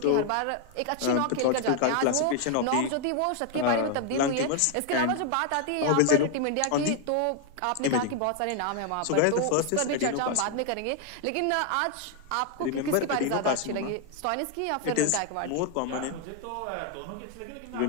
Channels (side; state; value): both; different; correlation 0.01